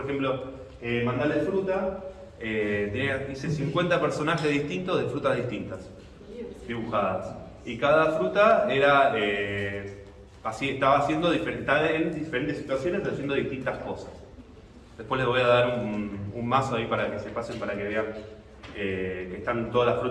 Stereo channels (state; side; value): identical; both; correlation 1.00